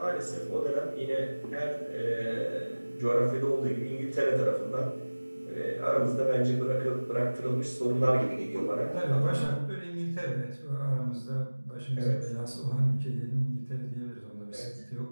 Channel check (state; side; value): inverted; both; correlation -1.00